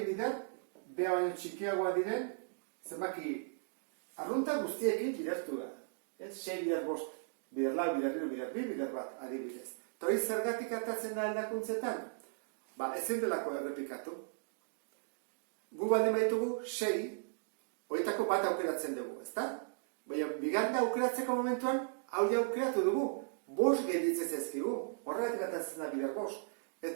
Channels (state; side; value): silent; left; digital silence